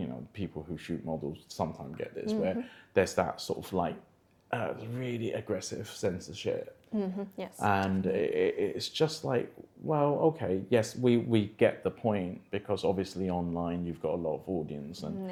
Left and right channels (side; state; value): both; identical; correlation 1.00